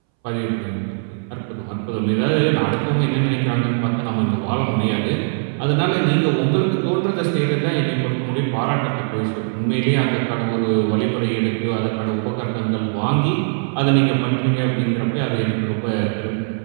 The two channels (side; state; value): left; silent; 64 dB below the other